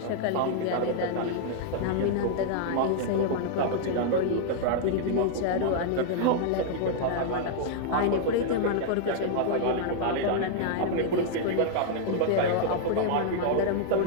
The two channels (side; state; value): both; different; correlation -0.01